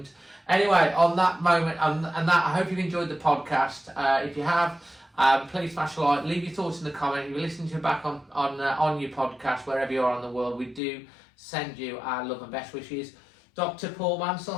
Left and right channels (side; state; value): right; drops out; at 10.8 s